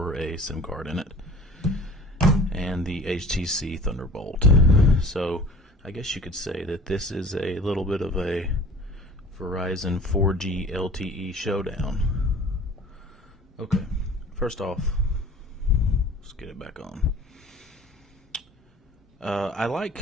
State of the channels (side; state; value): both; normal; correlation 0.44